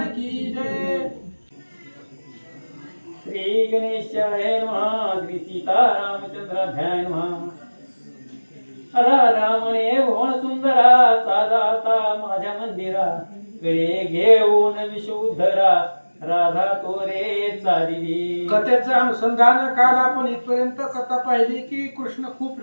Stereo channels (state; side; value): inverted; both; correlation -1.00